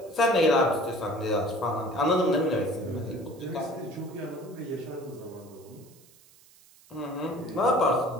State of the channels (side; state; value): right; noise; hiss, 27 dB below the sound